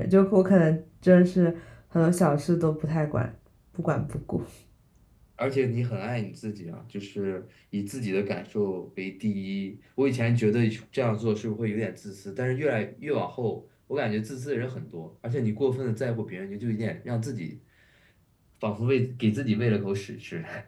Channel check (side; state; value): both; identical; correlation 1.00